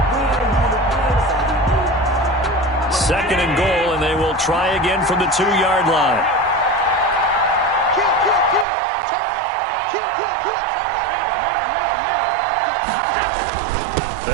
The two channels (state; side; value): drops out; left; at 8.7 s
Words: Second and goal, and they will try again from the 2-yard line.